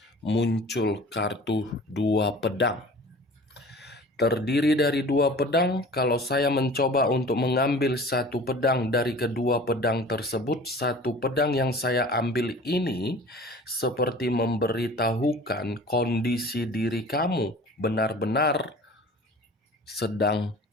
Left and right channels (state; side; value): normal; both; correlation 0.43